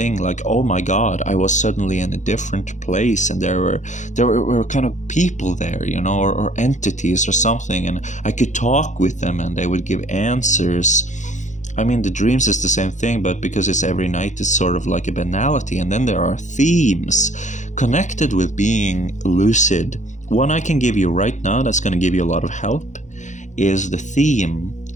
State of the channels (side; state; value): right; late; 0.35 ms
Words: Like, oh my God, I was suddenly in a different place, and there were kind of people there, you know, or entities or something, and I could talk with them, and they would give answers. I mean, the dreams is the same thing, but because it's every night, it's sort of like a banality. And then there are themes connected with being lucid. One I can give you right now that's going to give you a lot of help is the theme